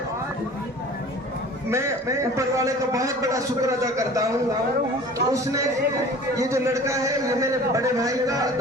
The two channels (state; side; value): normal; both; correlation 0.44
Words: मैं ऊपर वाले का बहुत बड़ा शुक्र अदा करता हूँ। उसने ये जो लड़का है ये मेरे बड़े भाई का